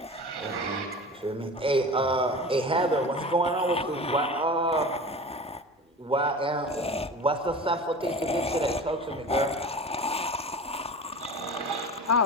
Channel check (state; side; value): normal; both; correlation 0.34